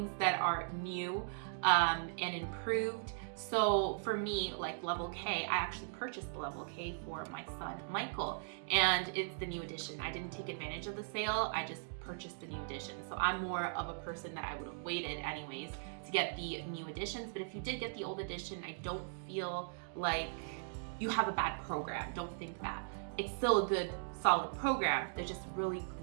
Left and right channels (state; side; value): silent; left; digital silence